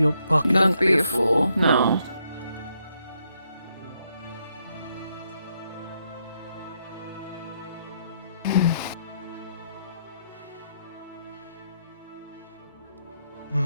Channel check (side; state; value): both; inverted; correlation -0.77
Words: pocket. Don't be a fool, no.